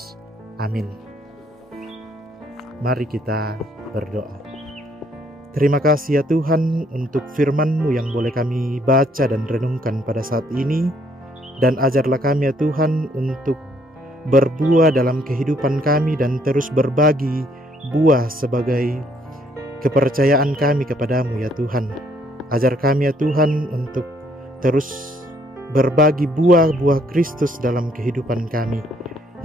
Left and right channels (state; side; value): normal; both; correlation 0.67